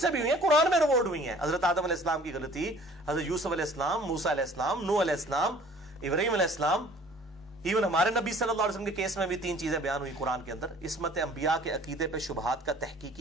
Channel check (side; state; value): both; normal; correlation 0.52